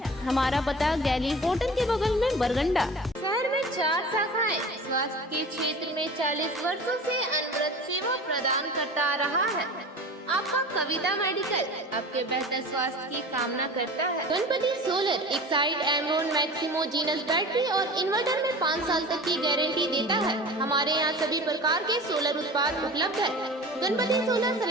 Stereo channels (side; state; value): both; normal; correlation 0.37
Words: हमारा पता गैली होटल के बगल में, बरगंडा। शहर में 4 शाखाएं। स्वास्थ्य के क्षेत्र में 40 वर्षों से अनवरत सेवा प्रदान करता आ रहा है। आपका कविता मेडिकल आपके बेहतर स्वास्थ्य की कामना करता है। गणपति सोलर एक side Amaron Maximo genus battery और इन्वर्टर में 5 साल तक की गारंटी देता है। हमारे यहाँ सभी प्रकार के सोलर उत्पाद उपलब्ध है। Ganpati solar,